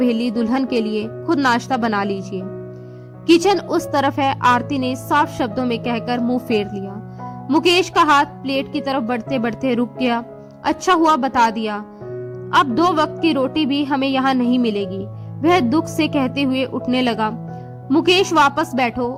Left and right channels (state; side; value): identical; both; correlation 1.00